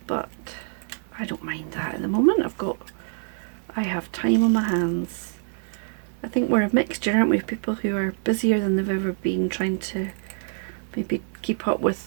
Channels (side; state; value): left; silent; digital silence